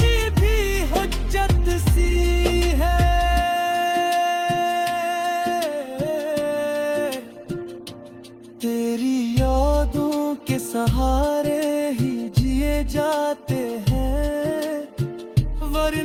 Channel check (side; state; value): both; identical; correlation 1.00